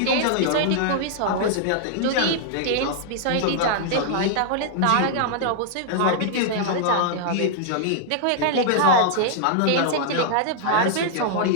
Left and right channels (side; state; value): both; different; correlation -0.01